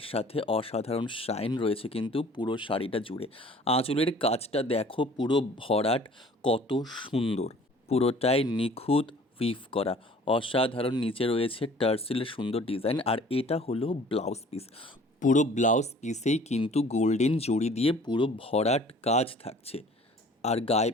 সাথে অসাধারণ শাইন রয়েছে কিন্তু পুরো শাড়িটা জুড়ে। আঁচলের কাজটা দেখো, পুরো ভরাট, কত সুন্দর, পুরোটাই নিখুঁত উইভ করা, অসাধারণ। নিচে রয়েছে টার্সেলের সুন্দর ডিজাইন, আর এটা হলো ব্লাউজ পিস। পুরো ব্লাউজ পিসেই কিন্তু গোল্ডেন জড়ি দিয়ে পুরো ভরাট কাজ থাকছে। আর গায়ে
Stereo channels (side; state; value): both; normal; correlation 0.50